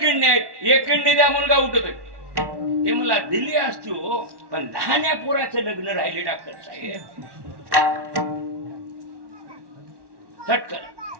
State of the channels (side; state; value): left; late; 1.1 ms